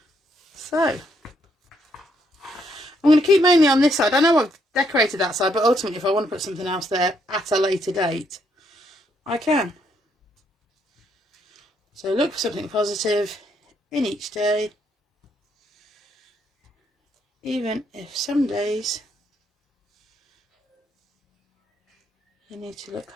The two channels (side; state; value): both; normal; correlation 0.73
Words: So, I'm going to keep mainly on this side. I know I've decorated that side, but ultimately, if I want to put something else there at a later date, I can. So, look for something positive in each day, even if some days you need to look